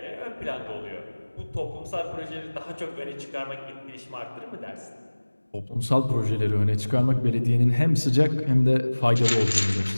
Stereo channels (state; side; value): inverted; both; correlation -1.00